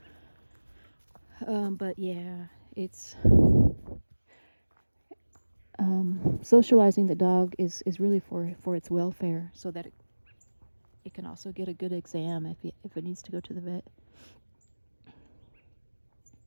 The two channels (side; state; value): both; inverted; correlation -1.00